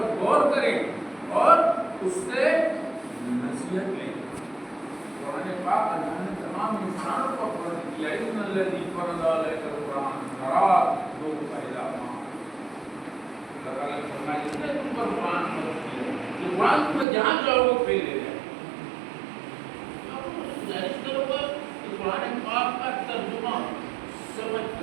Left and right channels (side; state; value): left; drops out; at 17.1 s